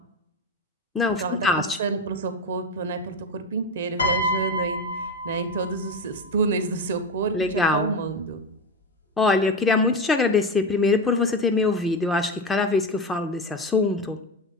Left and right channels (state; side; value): normal; both; correlation 0.18